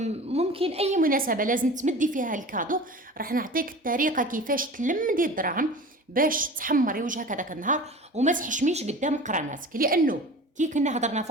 ممكن اي مناسبه لازم تمدي فيها الكادو، راح نعطيك الطريقه كيفاش تلمدي الدراهم باش تحمري وجهك هذاك النهار وما تحشميش قدام قراناتك. لانه كي كنا هضرنا في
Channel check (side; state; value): both; normal; correlation 0.37